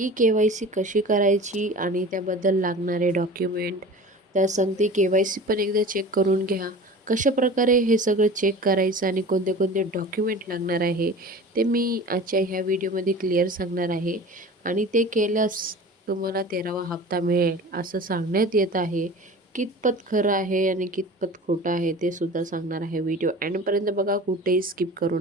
कशी करायची आणि त्याबद्दल लागणारे डॉक्युमेंट, त्या सांगते के-वाय-सी पण एकदा चेक करून घ्या. कशाप्रकारे हे सगळं चेक करायचं आणि कोणते कोणते डॉक्युमेंट लागणार आहे ते मी आजच्या ह्या व्हिडिओमध्ये क्लिअर सांगणार आहे. आणि ते केल्यास तुम्हाला 13वा हप्ता मिळेल असं सांगण्यात येत आहे. कितपत खरं आहे आणि कितपत खोटं आहे ते सुद्धा सांगणार आहे. व्हिडिओ एंडपर्यंत बघा, कुठेही स्किप करू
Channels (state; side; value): normal; both; correlation 0.38